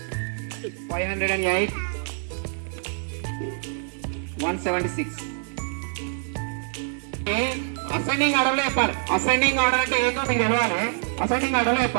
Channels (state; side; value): silent; left; digital silence